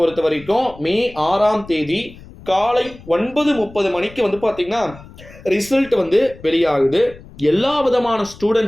வரைக்கும் மே 6ஆம் தேதி காலை 9:30 மணிக்கு வந்து பார்த்தீங்கன்னா ரிசல்ட் வந்து வெளியாகுது. எல்லா விதமான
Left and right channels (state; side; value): noise; left; rumble, 19 dB below the sound